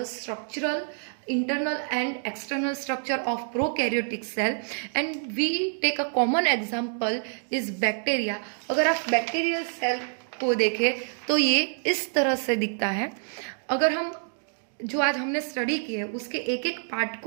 structural, internal and external structure of prokaryotic cell, and we take a common example is bacteria. अगर आप bacterial cell को देखें तो ये इस तरह से दिखता है. अगर हम जो आज हमने स्टडी की है उसके एक एक पार्ट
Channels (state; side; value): silent; left; 55 dB below the other